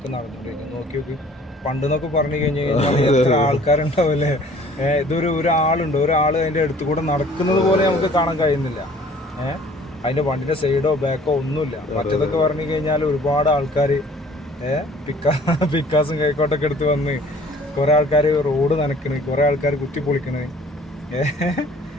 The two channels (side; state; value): both; normal; correlation 0.53